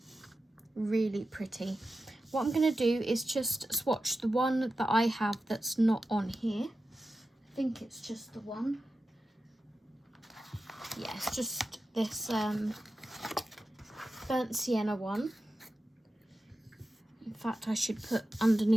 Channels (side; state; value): both; normal; correlation 0.92